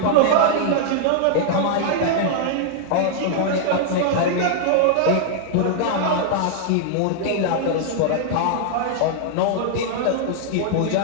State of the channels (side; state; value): both; different; correlation -0.01